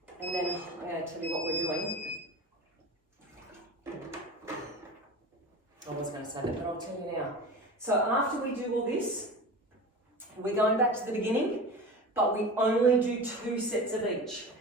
and then I'm going to tell you what we're doing. I was going to say that, but I'll tell you now. So after we do all this, we're going back to the beginning, but we only do 2 sets of each.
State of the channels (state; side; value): normal; both; correlation 0.32